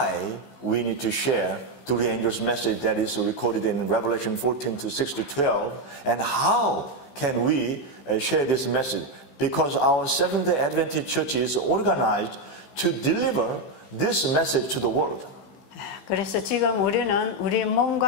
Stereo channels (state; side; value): late; right; 15 ms